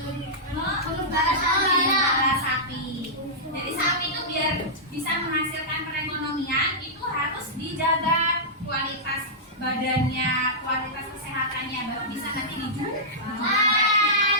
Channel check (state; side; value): normal; both; correlation -0.14